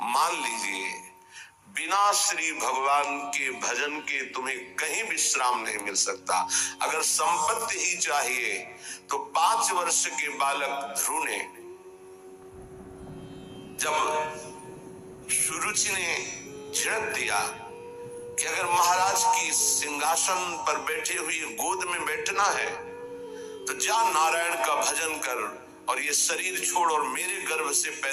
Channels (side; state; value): both; identical; correlation 1.00